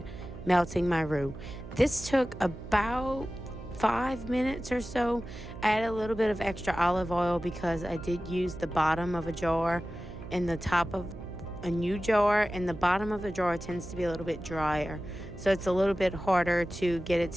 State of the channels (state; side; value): noise; right; hum, 12 dB below the sound